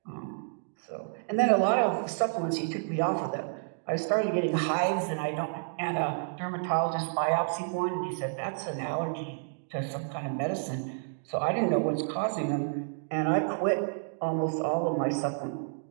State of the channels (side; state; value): left; silent; digital silence